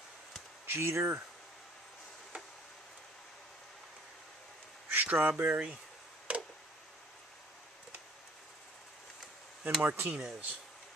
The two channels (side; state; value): both; normal; correlation 0.55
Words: Jeter, Strawberry, and Martinez.